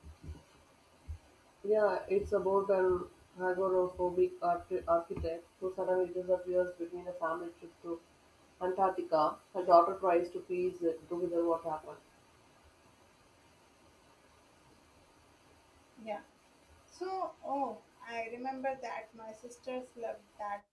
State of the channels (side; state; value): both; identical; correlation 1.00